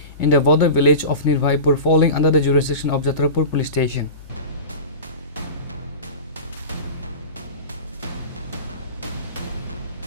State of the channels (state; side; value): inverted; both; correlation -0.30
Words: in the border village of Nirbhaypur, falling under the jurisdiction of Jatrapur Police Station.